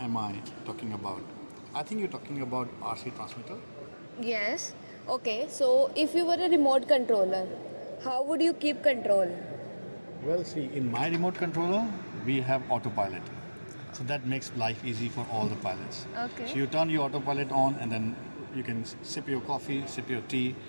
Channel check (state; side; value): inverted; both; correlation -1.00